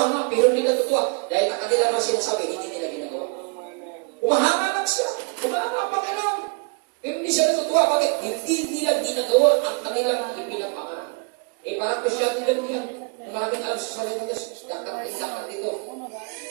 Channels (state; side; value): quieter; left; 33.8 dB